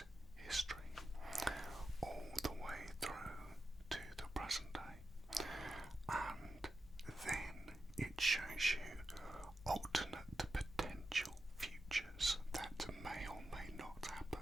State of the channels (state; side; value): normal; both; correlation 0.89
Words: history, all the way through to the present day. And then it shows you alternate potential futures that may or may not happen,